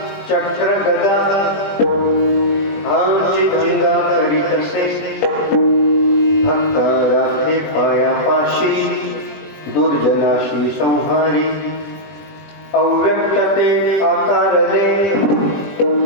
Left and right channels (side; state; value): right; late; 21 ms